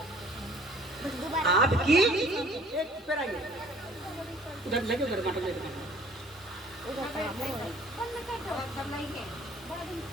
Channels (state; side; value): normal; both; correlation 0.54